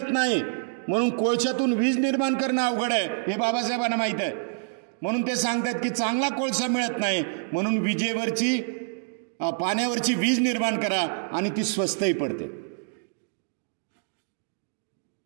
नाही, म्हणून कोळशातून वीज निर्माण करणं अवघड आहे, हे बाबासाहेबांना माहीत आहे. म्हणून ते सांगतात की चांगला कोळसा मिळत नाही, म्हणून विजेवरची पाण्यावरची वीज निर्माण करा आणि ती स्वस्तही पडते.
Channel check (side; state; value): left; silent; digital silence